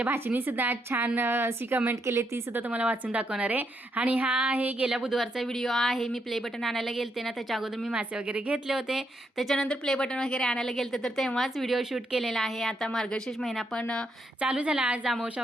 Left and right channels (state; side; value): normal; both; correlation 0.78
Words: भाचीने सुद्धा छान अशी कमेंट केली, ती सुद्धा तुम्हाला वाचून दाखवणार आहे. आणि हा आहे गेल्या बुधवारचा व्हिडिओ आहे. मी प्ले बटन आणायला गेलते ना, त्याच्या अगोदर मी मासे वगैरे घेतले होते. त्याच्यानंतर प्ले बटन वगैरे आणायला गेलते तर तेव्हाच व्हिडिओ शूट केलेला आहे. आता मार्गशीर्ष महिना पण चालू झाला, आज अमावस्या